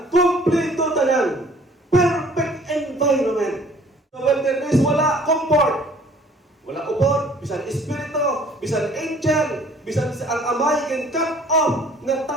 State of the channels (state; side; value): normal; both; correlation 0.54